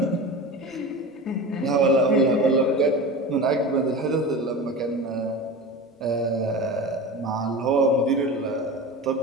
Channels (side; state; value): both; normal; correlation 0.30